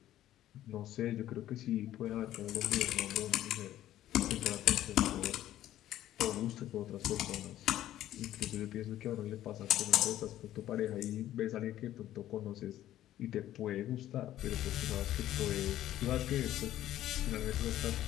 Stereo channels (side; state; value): right; quieter; 13.1 dB